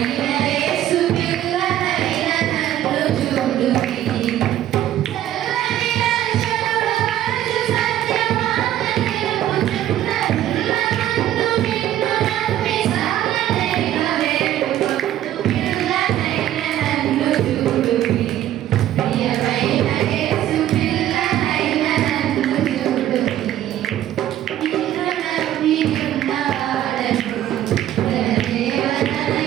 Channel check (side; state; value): left; quieter; 12.4 dB